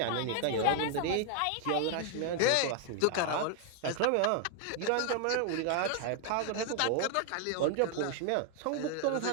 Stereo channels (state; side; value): different; both; correlation 0.00